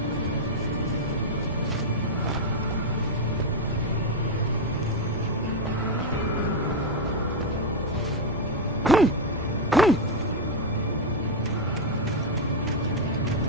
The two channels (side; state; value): both; normal; correlation 0.03